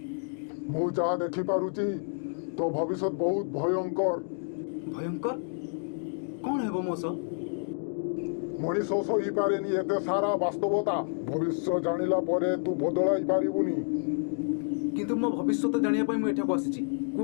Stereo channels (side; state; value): right; silent; digital silence